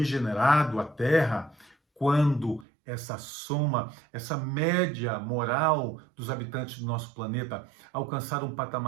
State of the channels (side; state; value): left; drops out; at 2.7 s